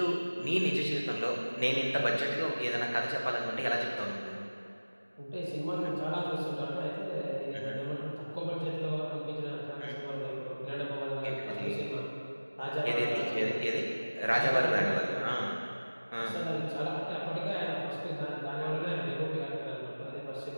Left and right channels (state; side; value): inverted; both; correlation -1.00